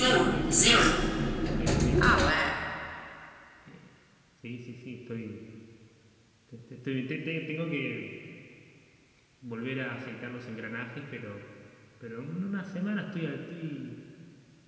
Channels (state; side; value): identical; both; correlation 1.00